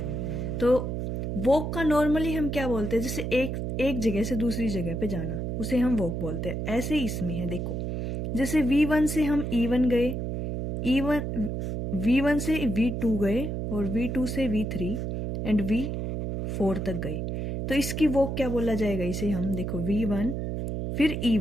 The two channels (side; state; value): right; noise; hum, 3 dB below the sound